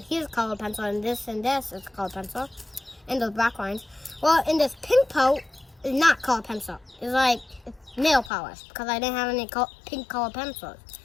here's called pencil, and this is called pencil. And those black lines. Well, in this pink part is not called pencil. It's like nail polish because I didn't have any pink colored pencils.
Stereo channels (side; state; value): right; drops out; at 8.3 s